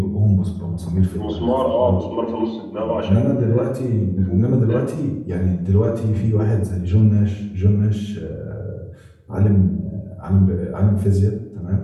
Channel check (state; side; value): identical; both; correlation 1.00